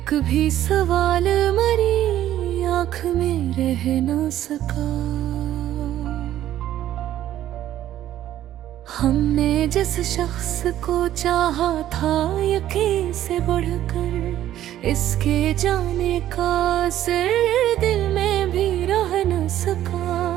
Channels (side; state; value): left; quieter; 12.5 dB